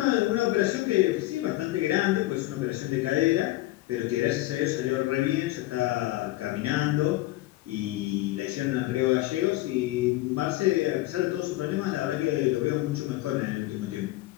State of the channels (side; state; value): right; quieter; 17.8 dB